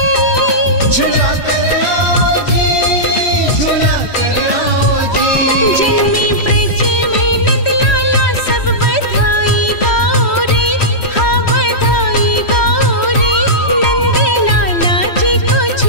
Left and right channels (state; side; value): late; right; 3.1 ms